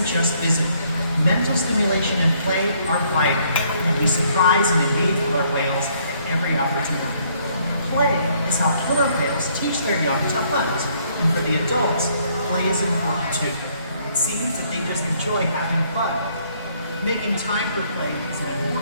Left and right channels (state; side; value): inverted; both; correlation -0.66